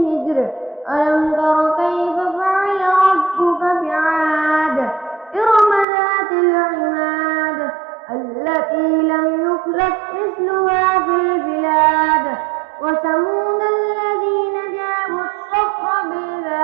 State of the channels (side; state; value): left; drops out; at 5.9 s